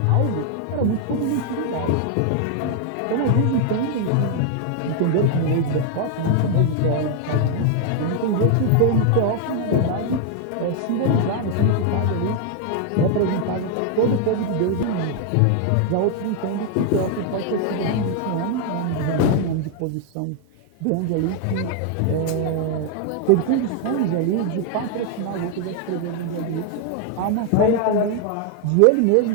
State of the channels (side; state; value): both; different; correlation 0.01